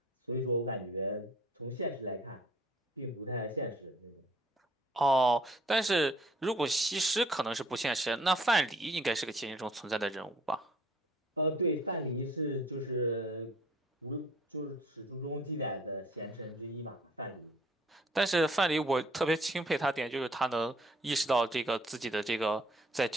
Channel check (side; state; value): both; normal; correlation 0.57